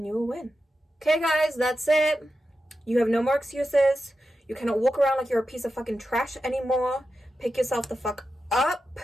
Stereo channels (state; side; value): normal; both; correlation 0.90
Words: you will win. Okay guys, that's it. You have no more excuses. You cannot walk around like you're a piece of fucking trash anymore. Pick yourself the fuck up.